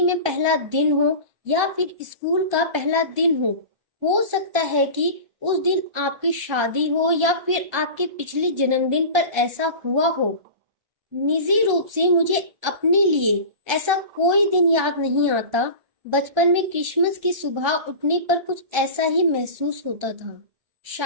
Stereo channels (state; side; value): late; left; 1.3 ms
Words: में पहला दिन हो, या फिर स्कूल का पहला दिन हो। हो सकता है कि उस दिन आपकी शादी हो या फिर आपके पिछले जन्मदिन पर ऐसा हुआ हो, निजी रूप से मुझे अपने लिए ऐसा कोई दिन याद नहीं आता। बचपन में क्रिसमस की सुबह उठने पर कुछ ऐसा ही महसूस होता था।